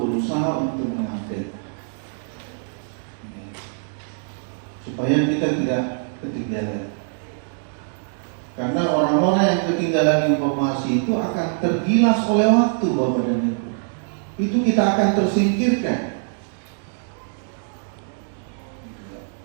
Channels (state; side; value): silent; left; digital silence